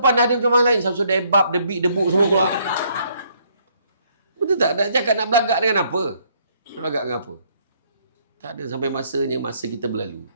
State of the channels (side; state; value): both; inverted; correlation -0.68